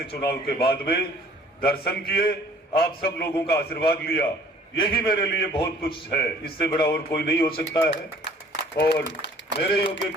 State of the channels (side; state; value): both; normal; correlation 0.54